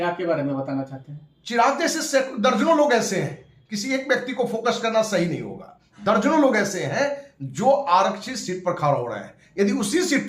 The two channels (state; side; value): identical; both; correlation 1.00